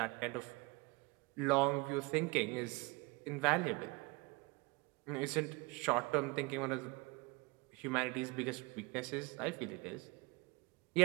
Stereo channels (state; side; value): quieter; left; 26.4 dB